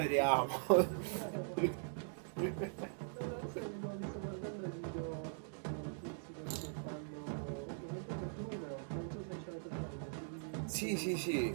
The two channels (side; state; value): left; silent; digital silence